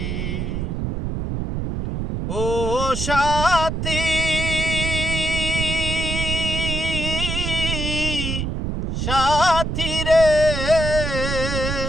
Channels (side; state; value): right; noise; rumble, 2 dB below the sound